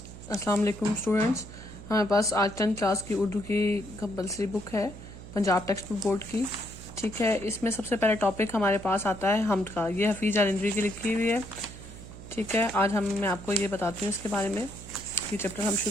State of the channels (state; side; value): noise; right; hum, 15 dB below the sound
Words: السلام علیکم اسٹوڈنٹس. ہمارے پاس آج 10th کلاس کی اردو کی کمپلسری بک ہے پنجاب ٹیکسٹ بک بورڈ کی. ٹھیک ہے, اس میں سب سے پہلا ٹاپک ہمارے پاس آتا ہے حمد کا. یہ حفیظ الندوی کی لکھی ہوئی ہے. ٹھیک ہے, آج میں آپ کو یہ بتاتی ہوں اس کے بارے میں. یہ چیپٹر ہم